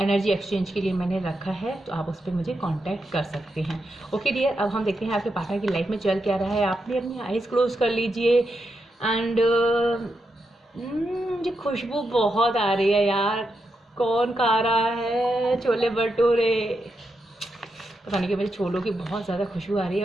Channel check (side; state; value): both; normal; correlation 0.85